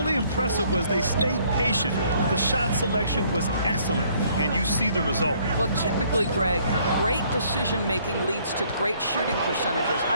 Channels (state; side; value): inverted; both; correlation -0.63